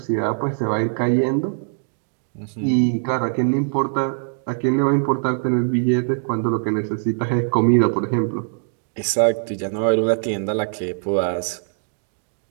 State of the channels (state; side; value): silent; left; 64 dB below the other